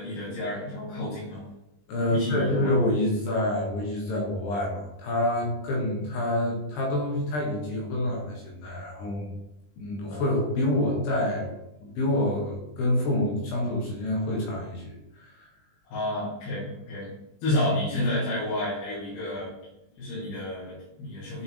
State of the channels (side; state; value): right; late; 20 ms